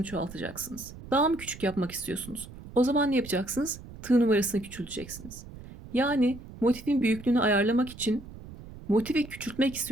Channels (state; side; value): noise; right; rumble, 15 dB below the sound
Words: çoğaltacaksınız. Daha mı küçük yapmak istiyorsunuz? O zaman ne yapacaksınız? Tığ numarasını küçülteceksiniz. Yani motifin büyüklüğünü ayarlamak için motifi küçültmek